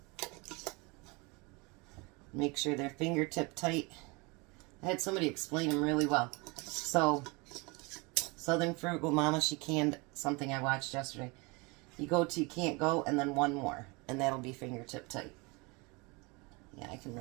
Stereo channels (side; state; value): left; quieter; 27.3 dB